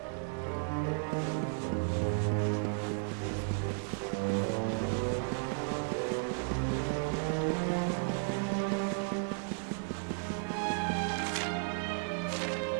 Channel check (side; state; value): left; silent; 55 dB below the other